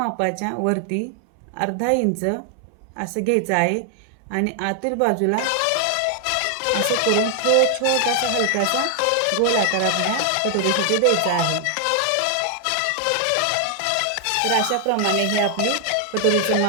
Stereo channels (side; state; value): both; different; correlation 0.00